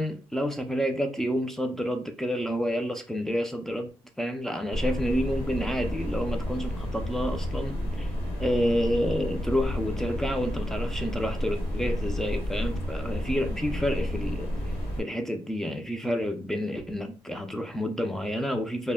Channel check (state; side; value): normal; both; correlation 0.87